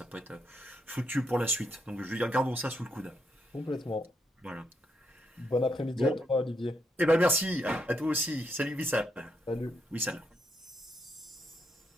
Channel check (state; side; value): normal; both; correlation 0.78